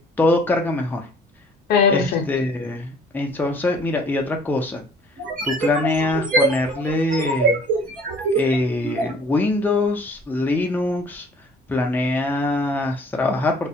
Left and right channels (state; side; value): normal; both; correlation 0.53